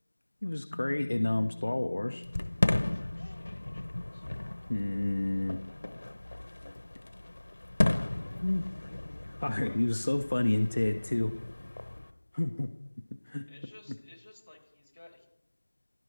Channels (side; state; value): both; inverted; correlation -1.00